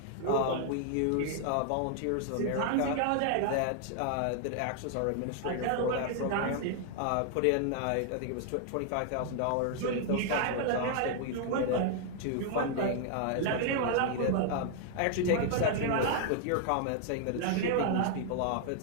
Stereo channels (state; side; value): different; both; correlation 0.00